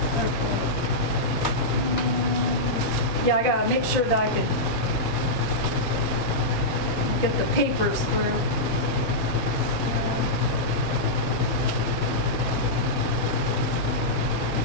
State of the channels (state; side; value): normal; both; correlation -0.10